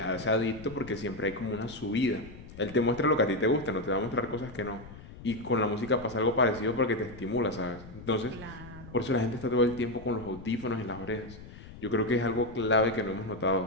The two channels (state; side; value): noise; left; rumble, 16 dB below the sound